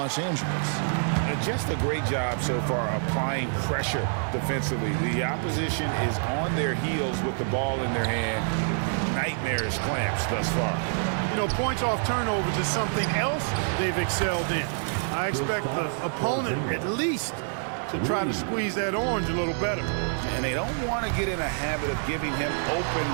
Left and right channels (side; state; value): left; silent; 55 dB below the other